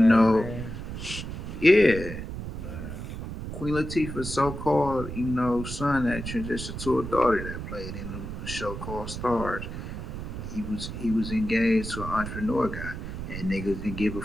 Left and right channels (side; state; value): right; noise; rumble, 7 dB below the sound